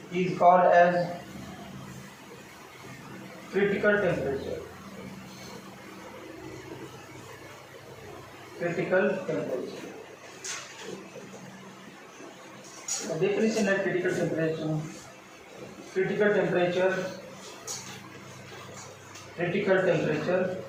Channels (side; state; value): both; identical; correlation 1.00